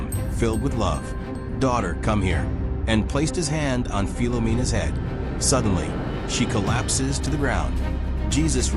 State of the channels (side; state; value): both; identical; correlation 1.00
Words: filled with love. "Daughter, come here," and placed his hand on Philomena's head. Suddenly, she collapses to the ground. Jesus